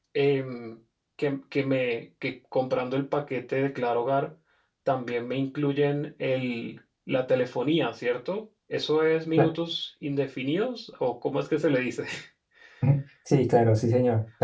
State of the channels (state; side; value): identical; both; correlation 1.00